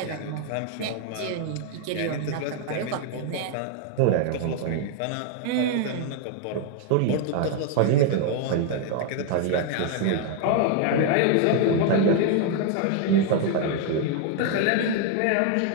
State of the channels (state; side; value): different; both; correlation 0.00